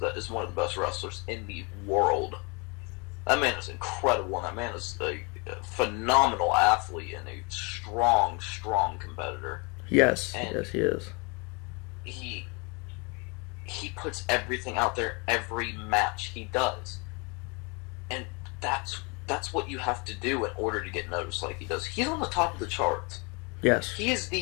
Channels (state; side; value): quieter; right; 31.0 dB